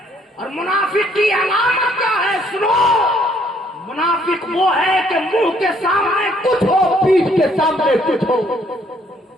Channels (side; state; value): both; normal; correlation 0.66